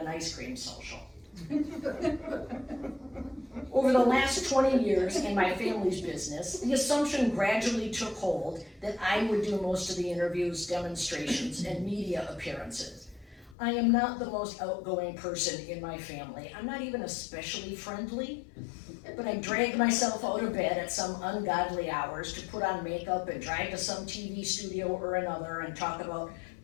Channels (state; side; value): drops out; right; at 13.6 s